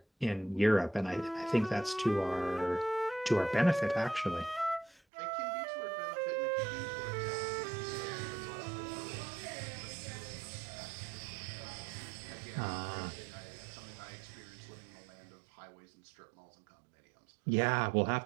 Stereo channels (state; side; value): drops out; left; at 5.0 s